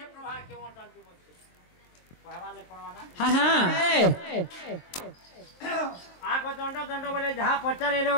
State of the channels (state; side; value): late; right; 23 ms